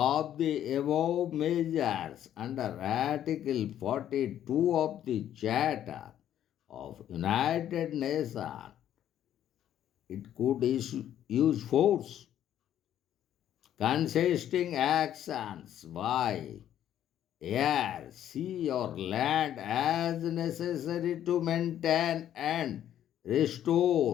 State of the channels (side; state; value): right; quieter; 11.0 dB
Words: the above measures under Article 42 of the Charter of United Nations. It could use force consisting actions by air, sea, or land as necessary to maintain and